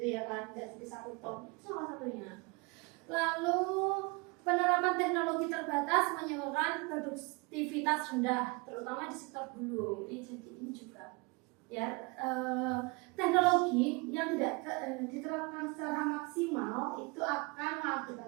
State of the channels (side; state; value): left; quieter; 28.3 dB